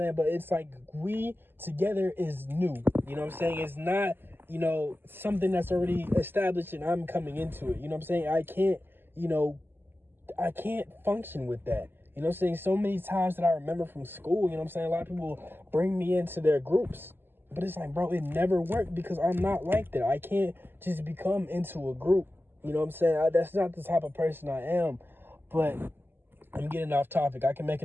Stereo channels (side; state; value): left; late; 0.098 ms